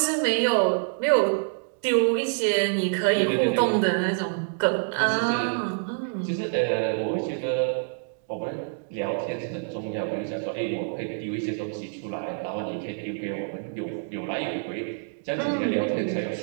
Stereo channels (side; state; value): left; silent; digital silence